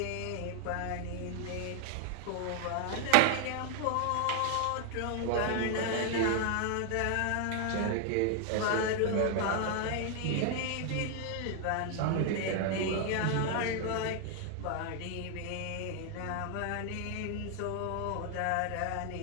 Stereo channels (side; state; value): both; different; correlation 0.00